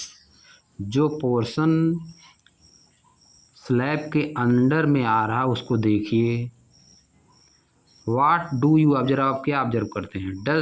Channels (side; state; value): both; identical; correlation 1.00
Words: जो पोर्शन स्लैब के अंडर में आ रहा है उसको देखिए। वाट डू यू ऑब्जर्व, आप क्या ऑब्जर्व करते हैं? Does